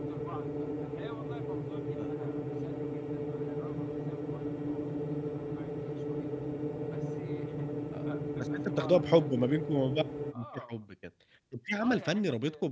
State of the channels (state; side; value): identical; both; correlation 1.00